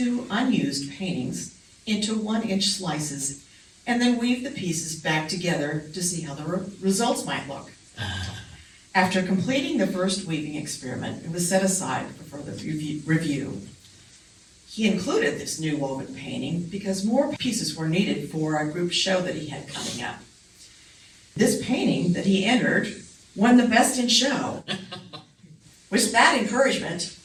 unused paintings into 1-inch slices and then weave the pieces back together to see how the results might look. After completing the first weaving experiment, it was set aside for further review. He included this new woven painting because more pieces were needed for a group show that he had coming up. This painting that he entered won the Best in Show. With that encouragement,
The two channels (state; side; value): identical; both; correlation 1.00